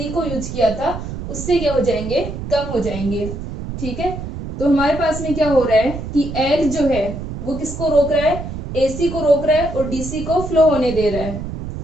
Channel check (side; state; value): right; noise; rumble, 7 dB below the sound